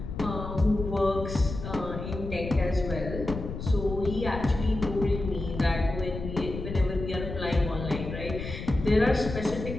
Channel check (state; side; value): noise; left; rumble, 7 dB below the sound